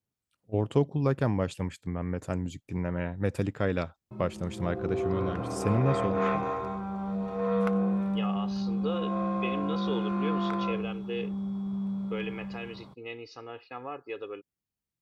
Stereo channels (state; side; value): identical; both; correlation 1.00